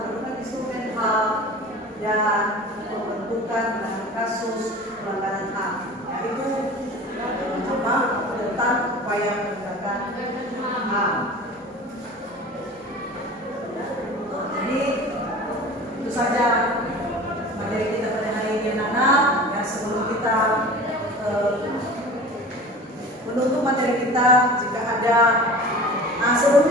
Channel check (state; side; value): normal; both; correlation 0.38